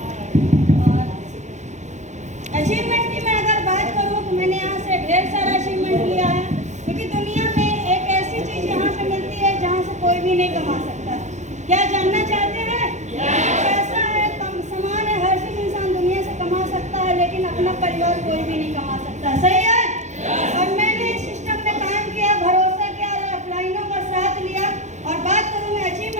और अचीवमेंट की मैं अगर बात करूँ तो मैंने यहाँ से ढेर सारा अचीवमेंट लिया है, क्योंकि दुनिया में एक ऐसी चीज़ यहाँ पे मिलती है जहाँ से कोई भी नहीं कमा सकता। क्या जानना चाहते हैं? पैसा है, सामान है, हर चीज़ इंसान दुनिया से कमा सकता है, लेकिन अपना परिवार कोई भी नहीं कमा सकता। सही है? और मैंने इस सिस्टम में काम किया, भरोसा किया और अपलाइनों का साथ लिया। और बात करूँ मैं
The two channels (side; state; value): left; late; 0.34 ms